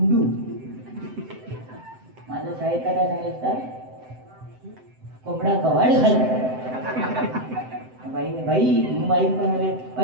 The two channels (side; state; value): left; late; 7.8 ms